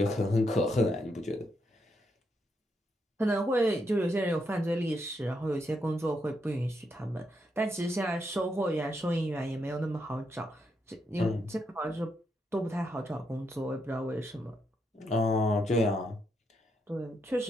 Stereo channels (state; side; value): normal; both; correlation 0.79